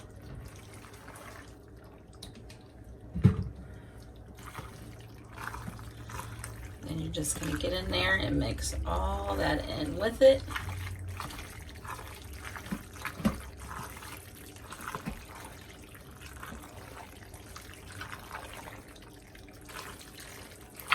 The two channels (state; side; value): identical; both; correlation 1.00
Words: You're just going to get in there and mix all that in with it.